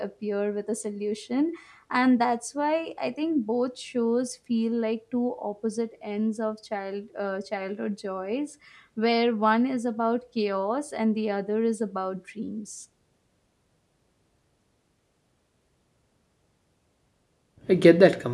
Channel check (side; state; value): both; identical; correlation 1.00